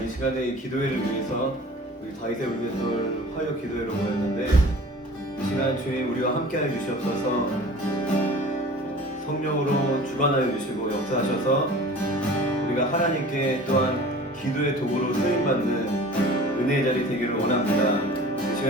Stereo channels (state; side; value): normal; both; correlation 0.43